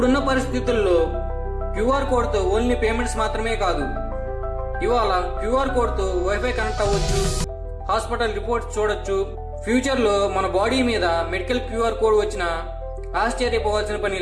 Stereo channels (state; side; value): identical; both; correlation 1.00